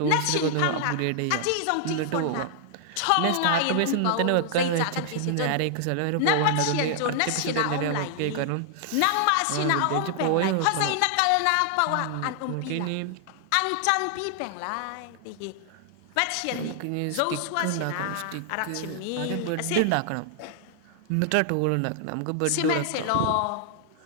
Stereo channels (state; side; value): different; both; correlation 0.00